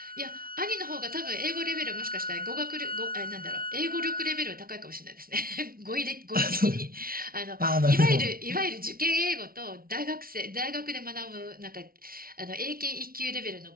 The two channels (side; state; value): left; late; 0.43 ms